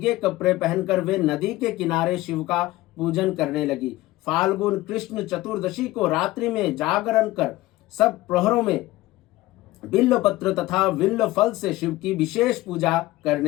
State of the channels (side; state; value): right; quieter; 17.9 dB